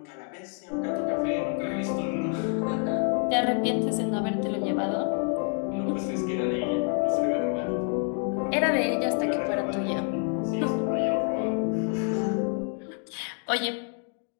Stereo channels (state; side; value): quieter; right; 39.9 dB